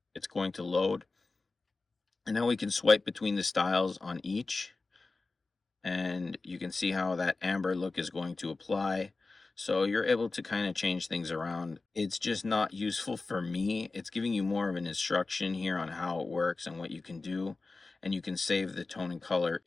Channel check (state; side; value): quieter; right; 3.7 dB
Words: It's going to load, and now we can swipe between the styles on each, and you can see how that amber look is going to apply. So you're able to kind of change things around. It's just not useful for me. It's giving you more of an instruction here on how it works and what you can do, and you can save the tone and color